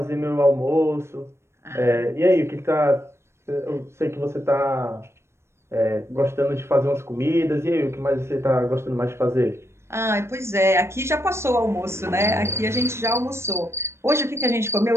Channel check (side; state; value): left; late; 0.13 ms